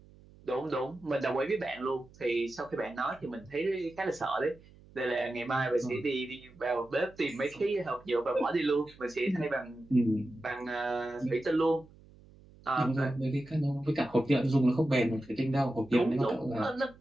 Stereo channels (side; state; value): right; noise; hum, 24 dB below the sound